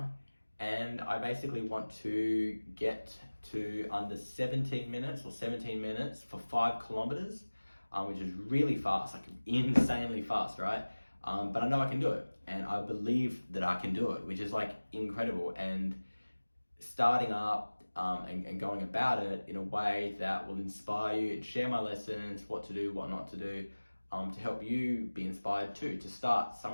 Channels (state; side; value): inverted; both; correlation -1.00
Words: and I basically want to get to under 17 minutes for 5 kilometers, which is really fast, like insanely fast, right? But I know I can do it, and I believe that I can do it, which is like incredible. And starting up and going about it in a way that will inspire you and share my lessons, what to do, what not to do, to help you be inspired too, to start